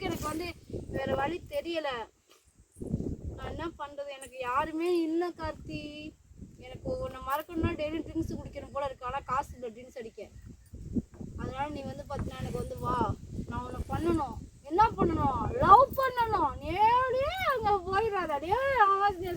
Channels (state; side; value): identical; both; correlation 1.00